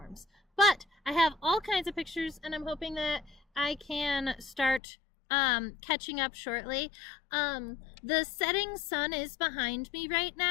But I have all kinds of pictures, and I'm hoping that I can start catching up shortly. The setting sun is behind me right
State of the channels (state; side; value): drops out; right; at 4.8 s